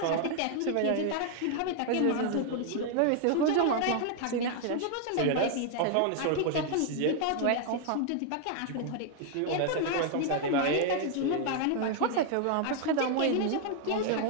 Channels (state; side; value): different; both; correlation 0.00